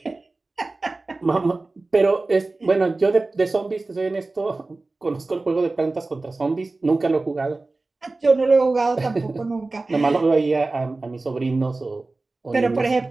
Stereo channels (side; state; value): left; quieter; 3.4 dB